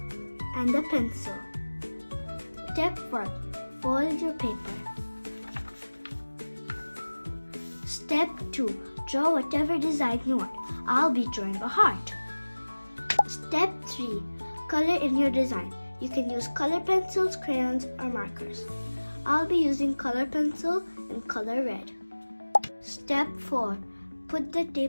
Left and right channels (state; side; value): inverted; both; correlation -1.00